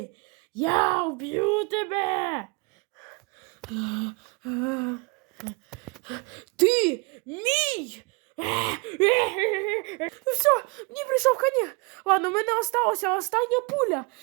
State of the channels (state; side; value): quieter; left; 30.0 dB